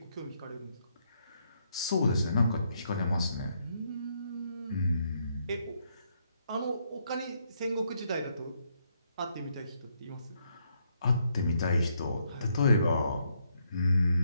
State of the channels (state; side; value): inverted; both; correlation -0.75